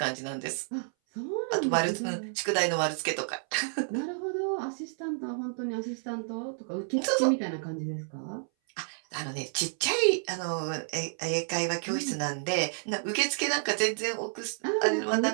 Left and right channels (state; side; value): silent; left; 58 dB below the other